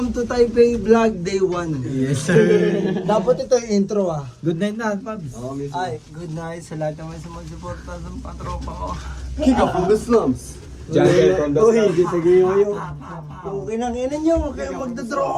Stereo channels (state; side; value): identical; both; correlation 1.00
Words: to Taipei Vlog Day 1. Yes, sir. Dapat ito yung intro ah. Good night na, Pabs. Ay, good night sa lahat naman sa magsuporta sa patropa ko. Kick up from the slums. Jungle from the slums. Uy, sige yo. Okay nang ina nyo, huwag kayong